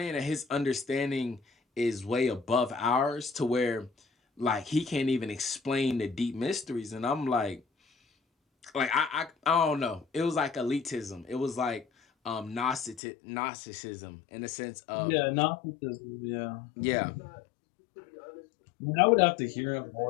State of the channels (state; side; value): drops out; right; at 13.0 s